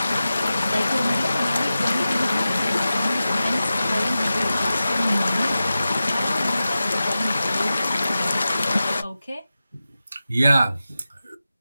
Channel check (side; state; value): both; inverted; correlation -0.94